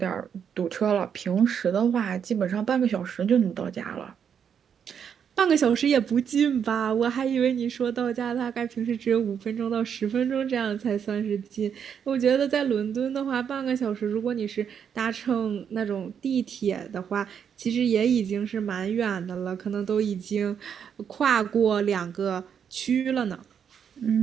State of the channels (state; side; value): quieter; left; 7.8 dB